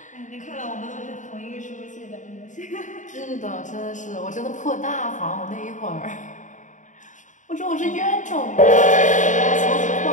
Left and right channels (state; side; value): late; right; 0.36 ms